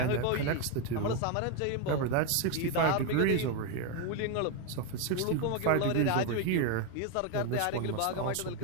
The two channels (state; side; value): different; both; correlation 0.02